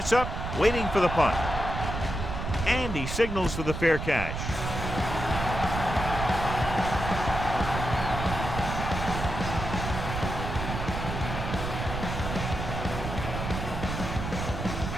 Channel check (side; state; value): right; noise; rumble, 4 dB below the sound